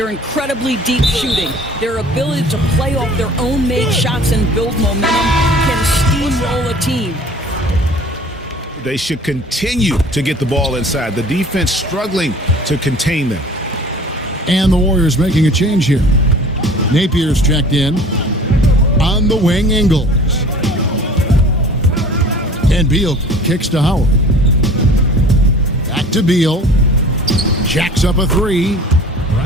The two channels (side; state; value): both; normal; correlation 0.46